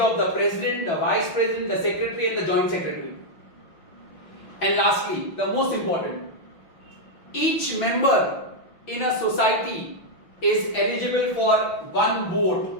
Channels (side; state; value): right; late; 5.9 ms